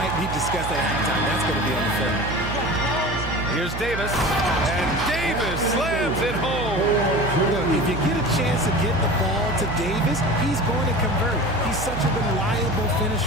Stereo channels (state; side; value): noise; right; hum, 6 dB below the sound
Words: be discussed at halftime. That's going to be on the film. Here's Davis. And Davis slams it home. Look, if you get a chance to get the ball to Davis, he's going to convert. He's such a reliable